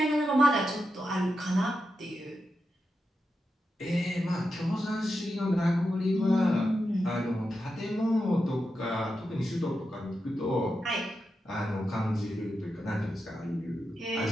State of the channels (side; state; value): both; normal; correlation 0.88